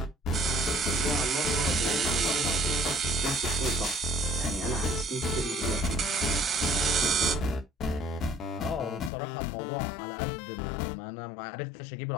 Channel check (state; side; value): drops out; right; at 9.1 s